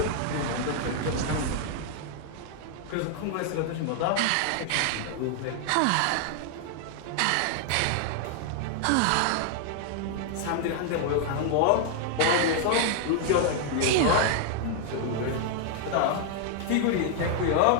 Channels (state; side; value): different; both; correlation 0.00